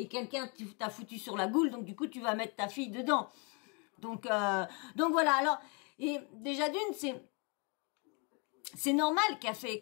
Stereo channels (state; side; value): quieter; right; 34.1 dB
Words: quelqu'un t'a foutu sur la goule, donc du coup, tu vas mettre ta fille dedans. Donc voilà, alors, et déjà d'une, c'est normal